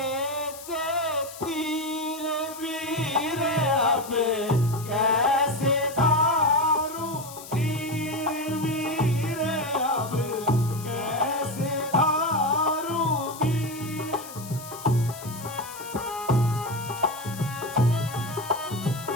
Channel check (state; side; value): noise; left; hiss, 15 dB below the sound